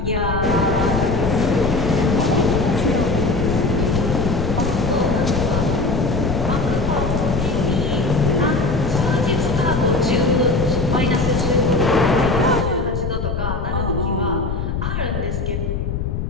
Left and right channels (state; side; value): noise; left; rumble, 3 dB below the sound